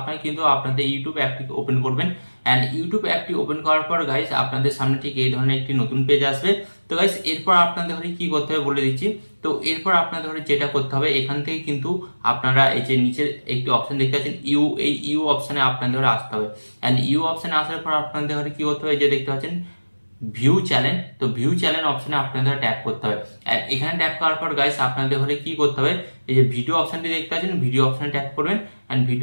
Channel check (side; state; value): both; inverted; correlation -1.00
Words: কিন্তু আপনাদের ইউটিউব অ্যাপটি ওপেন করবেন, এন্ড ইউটিউব অ্যাপটি ওপেন করার পর গাইস আপনাদের সামনে ঠিক এই ধরনের একটি নতুন পেজ আসবে। তো গাইস এরপর আপনাদের ঘরে কি করতে হবে বলে দিচ্ছি। তো এরপর আপনাদের ঘরে যেটা করতে হবে, এখান থেকে কিন্তু আপনারা এই যে নিচে একটি অপশন দেখতে পাচ্ছেন এই ইউ অপশনে আপনাদের ঘরে আসতে হবে, এন্ড ইউ অপশনে আসার পর আপনাদের ঘরে কি করতে হবে, যে দেখতে পাচ্ছেন ভিউ চ্যানেল, তো ভিউ চ্যানেল অপশনে আপনাদের ট্যাপ করতে হবে। আর এখানে ট্যাপ করার পর গাইস আপনাদের ঘরে কি করতে হবে, এই যে ভিডিও অপশনটি দেখতে পাচ্ছেন ভিডিও অপশনে ট্যাপ করবেন, এন্ড